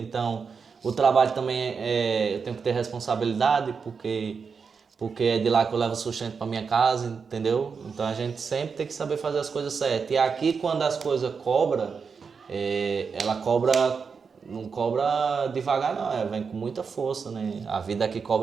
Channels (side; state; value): left; quieter; 5.6 dB